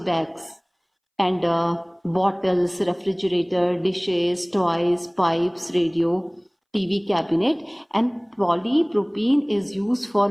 bags and bottles, refrigerator, dishes, toys, pipes, radio, TV cabinet. And polypropene is used for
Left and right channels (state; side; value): identical; both; correlation 1.00